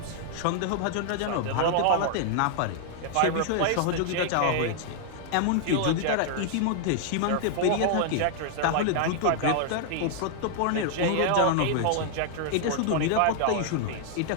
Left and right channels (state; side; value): different; both; correlation 0.00